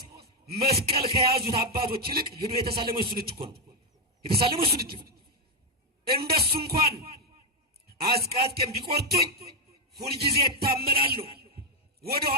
መስቀል ከያዙት አባቶች ይልቅ ሄዶ የተሳለመው እሱን እጅ እኮ ነው። የተሳለመው እሱን እጅ እንደሱ እንኳን አስቃጥቄም ቢቆርጡኝ ሁልጊዜ እታመናለሁ፣ ወደ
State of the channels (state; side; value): normal; both; correlation 0.04